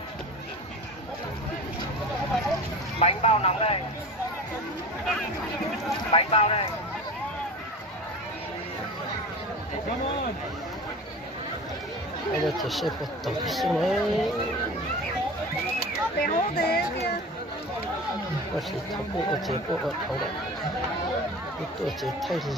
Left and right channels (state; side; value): normal; both; correlation 0.34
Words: Bánh bao nóng đây. Bánh bao đây. Hay là chỉ sẽ có tổng số này. Bé hố thế kia. Có thể thấu bộ ở chế bộ ở thấu đó. Cái tổ chế thay